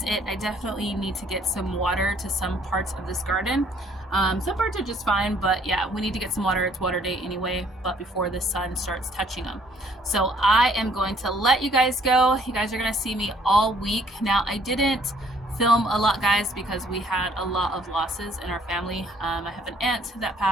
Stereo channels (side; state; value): both; normal; correlation 0.62